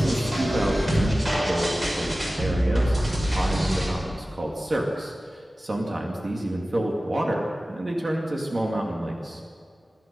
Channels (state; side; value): normal; both; correlation 0.96